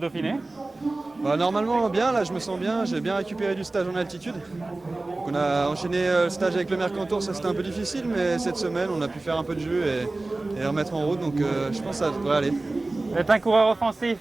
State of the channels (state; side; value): quieter; left; 3.0 dB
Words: Dauphiné? Normalement bien, là je me sens bien, j'ai bien récupéré du stage en altitude. Donc on a enchaîné le stage avec le Mercantour, ça c'était un peu difficile, mais cette semaine on a pu faire un peu de jeu et remettre en route, donc je pense que ça devrait aller. Vous êtes un coureur offensif.